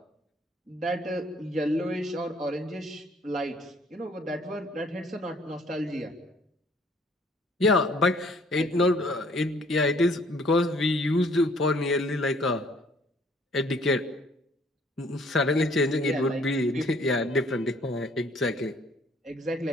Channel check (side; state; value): both; normal; correlation 0.60